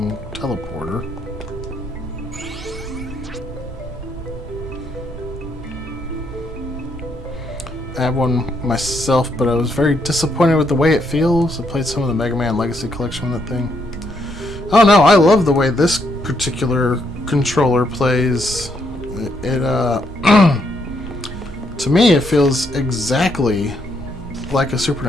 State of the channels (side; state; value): both; normal; correlation 0.75